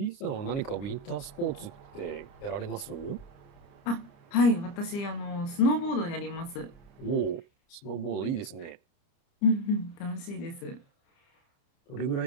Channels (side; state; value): right; late; 30 ms